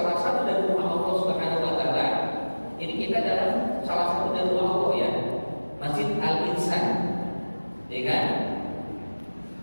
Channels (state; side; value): inverted; both; correlation -1.00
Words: satu dari rumah Allah Subhanahu wa Ta'ala. Ini kita dalam salah satu dari rumah Allah ya, Masjid Al-Insan, ya kan?